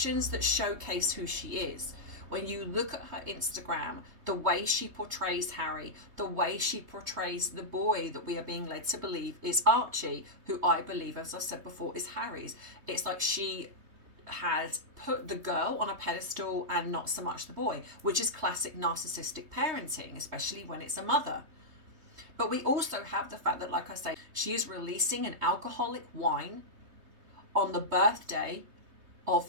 that showcase who she is. When you look at her Instagram, the way she portrays Harry, the way she portrays the boy that we are being led to believe is Archie, who I believe, as I said before, is Harry's. It's like she has put the girl on a pedestal and not so much the boy, which is classic narcissistic parenting, especially when it's a mother. But we also have the fact that, like I say, she is releasing an alcoholic wine on the birthday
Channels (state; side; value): late; left; 3.2 ms